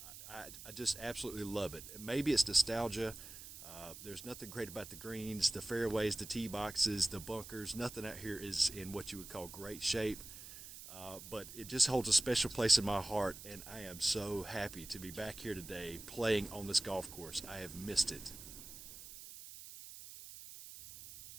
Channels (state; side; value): noise; right; hiss, 13 dB below the sound